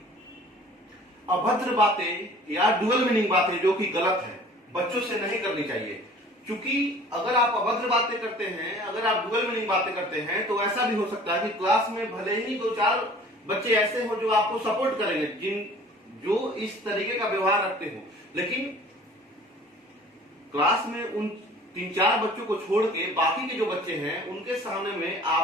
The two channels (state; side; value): normal; both; correlation 0.48